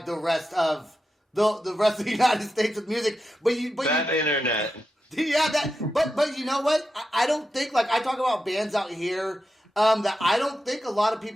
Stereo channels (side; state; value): both; normal; correlation 0.89